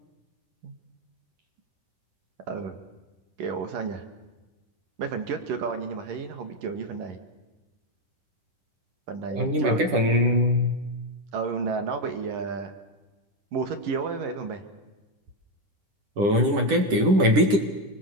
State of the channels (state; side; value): late; left; 10 ms